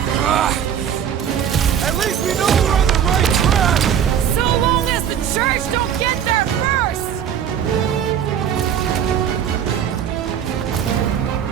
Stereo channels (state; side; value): quieter; left; 8.9 dB